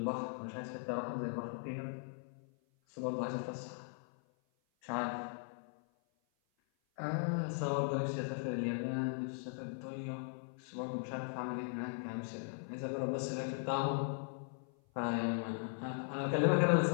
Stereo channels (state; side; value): silent; right; 52 dB below the other